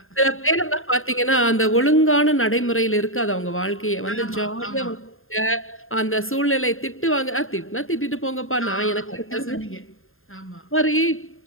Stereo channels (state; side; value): late; right; 0.60 ms